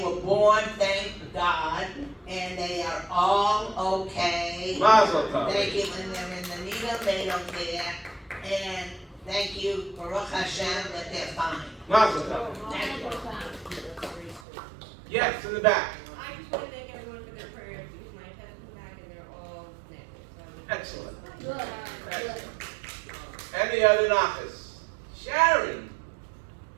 were born, thank God, and they are all okay. Mazel tov. Thank you, when they're in the needle, they don't care. And thank you, Baruch Hashem, that they're fine. Mazel tov. Thank you. Yes, in the back. I just want to thank everyone for their prayers because my test is back and they're all negative. Excellent. Good. Good. Any other nachas? Sharon.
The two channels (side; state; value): left; drops out; at 14.5 s